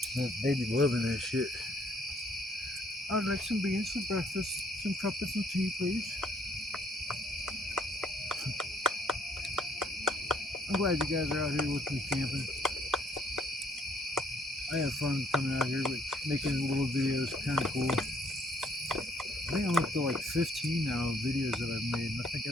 They be loving that shit. I'd like some beans for breakfast. Some crumpets and tea, please. I'm glad you guys are out here with me camping. I have fun coming out here, but making little videos kind of cool. I think I'm up to like 15 now of videos that I've made, and I think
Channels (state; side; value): normal; both; correlation 0.66